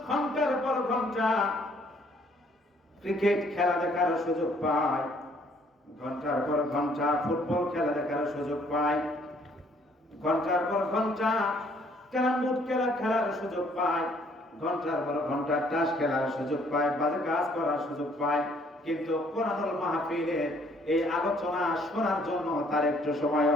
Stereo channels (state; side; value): normal; both; correlation 0.63